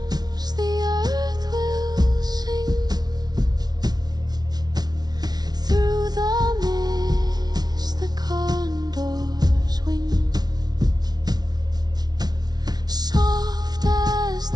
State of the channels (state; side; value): late; left; 0.19 ms